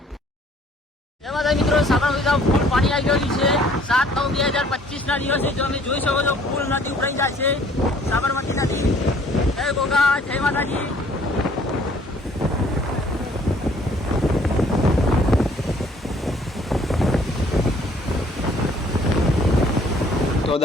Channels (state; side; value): normal; both; correlation 0.59